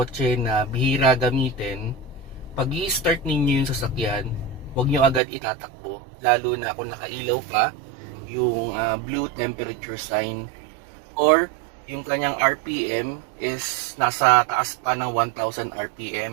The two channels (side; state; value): left; drops out; at 5.2 s